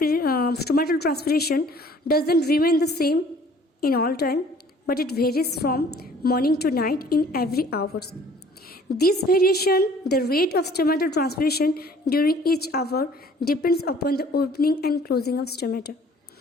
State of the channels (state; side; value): normal; both; correlation 0.54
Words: transpiration doesn't remain the same in all time, but it varies from morning to night in every hours. This variation, the rate of stomatal transpiration during each hour, depends upon the opening and closing of stomata,